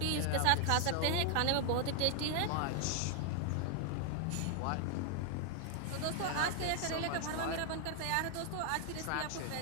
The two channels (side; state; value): both; different; correlation 0.00